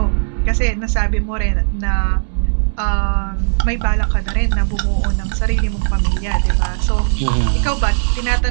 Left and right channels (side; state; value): left; silent; 68 dB below the other